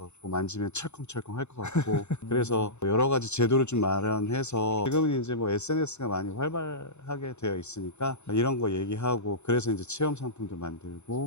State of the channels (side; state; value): right; late; 0.82 ms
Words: 만지면 철컹철컹 할 것 같고 그래서 여러 가지 제도를 좀 마련해서 지금은 이제 뭐 SNS가 많이 활발하게 되어 있으니까 이런 거 얘기하고 그래서 이제 체험 상품도